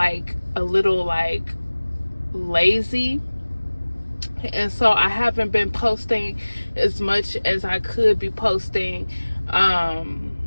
a little lazy. And so I haven't been posting as much as I could be posting. I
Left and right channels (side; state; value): both; inverted; correlation -1.00